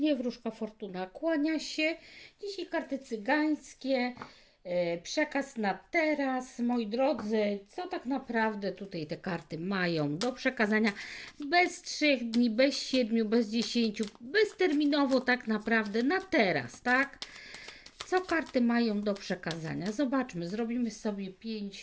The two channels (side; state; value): both; identical; correlation 1.00